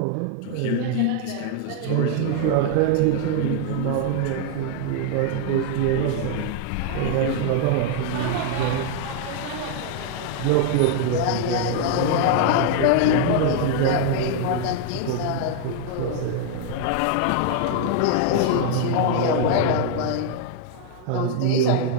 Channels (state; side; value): different; both; correlation 0.00